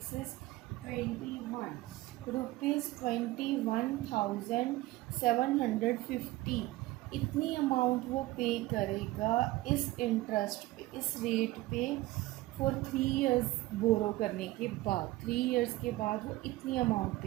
इज़ 21 रुपीज़, 21,750, इतनी अमाउंट वो पे करेगा इस इंटरेस्ट पे, इस रेट पे फॉर 3 इयर्स बोरो करने के बाद, 3 इयर्स के बाद वो इतनी अमाउंट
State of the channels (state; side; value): quieter; left; 18.3 dB